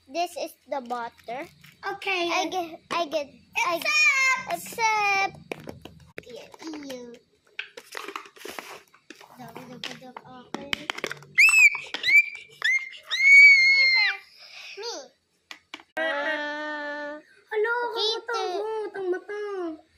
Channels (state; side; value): identical; both; correlation 1.00